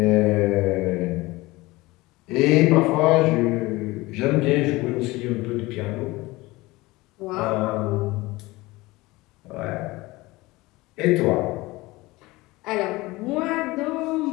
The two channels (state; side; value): quieter; right; 20.9 dB